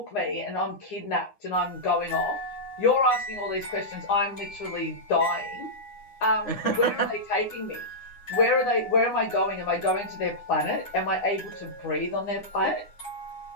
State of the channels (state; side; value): late; right; 9.8 ms